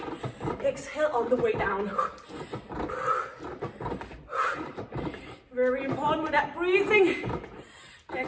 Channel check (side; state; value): both; identical; correlation 1.00